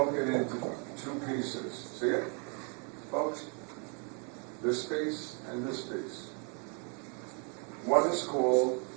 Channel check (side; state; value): left; quieter; 38.4 dB